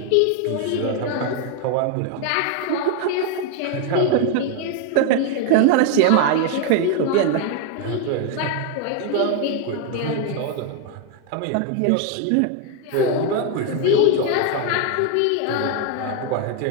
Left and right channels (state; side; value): different; both; correlation 0.01